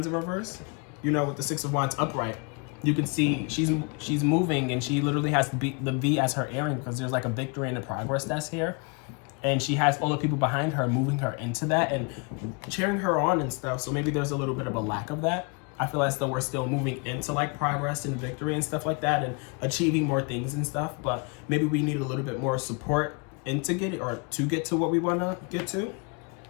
in reverse. You know, with the Six of Wands upright, you can see she's moving, and she literally has the V as her airing, because there's like a victory and a progress that's here. And she has all the people behind her moving her into that and cheering her on and stuff. So maybe there's a little bit of a lack of that. I feel as though we're still moving into like progress and victory and stuff like that, and achieving more things and stuff. But maybe we need a little bit more support to get it, or to get to what we want to get to.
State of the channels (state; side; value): quieter; right; 33.4 dB